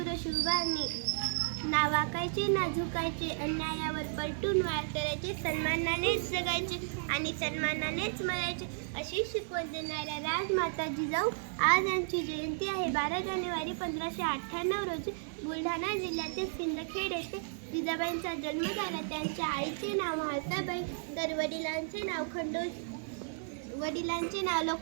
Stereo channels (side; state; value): left; silent; 55 dB below the other